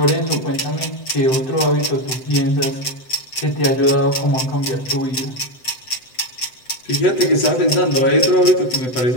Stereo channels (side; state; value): right; late; 7.8 ms